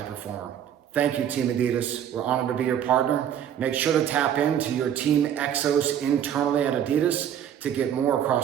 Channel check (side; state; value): left; quieter; 9.7 dB